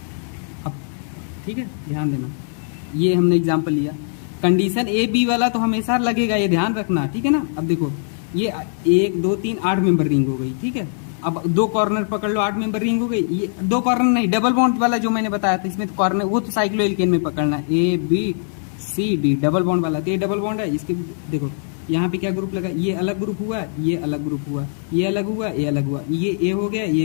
अब, ठीक है, ध्यान देना, ये हमने एग्जाम्पल लिया, कंडीशन AB वाला तो हमेशा लगेगा, ये ध्यान रखना, ठीक है ना। अब देखो ये 1 2 3 8 मेंबर रिंग हो गई, ठीक है। अब 2 कॉर्नर पकड़ लो, 8 मेंबर रिंग हो गई। ये 2 कॉर्नर नहीं, डबल बॉन्ड वाला जो मैंने बताया था, इसमें तो कॉर्नर, वो तो साइक्लोएल्केन में पकड़ना है, ABCD डबल बॉन्ड वाला, तो ये डबल बॉन्ड है। इसके देखो यहाँ पे क्या ग्रुप लगा, ये अलग ग्रुप हुआ, ये अलग ग्रुप हुआ, ये अलग हुआ, ये अलग हुआ, ये A हो गया,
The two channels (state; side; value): silent; right; 61 dB below the other